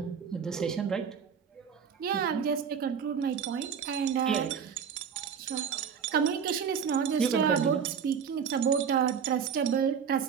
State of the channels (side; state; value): left; quieter; 7.1 dB